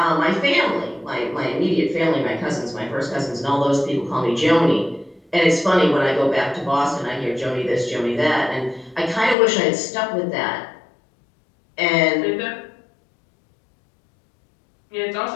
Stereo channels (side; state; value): right; drops out; at 9.3 s